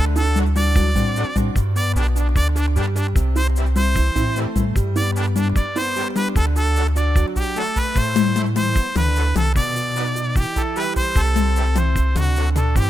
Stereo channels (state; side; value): normal; both; correlation 0.90